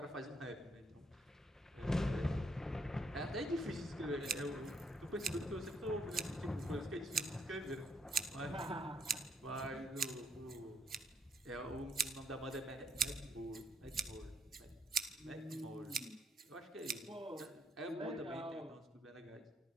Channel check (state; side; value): normal; both; correlation 0.71